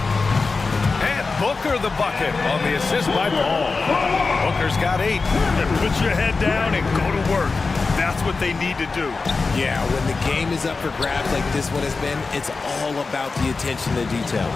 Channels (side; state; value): right; quieter; 4.1 dB